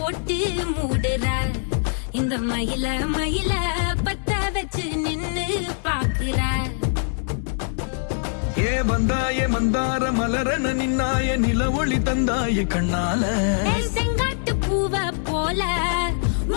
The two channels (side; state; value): right; silent; digital silence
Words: மூடுற இந்த மயில மயில பத்த வச்சு நின்னு பாக்குற ஏ வந்தாய மந்தார மலரன நின்னாய நில ஒளி தந்தாய கண்ணால செங்காட்டு பூவ போல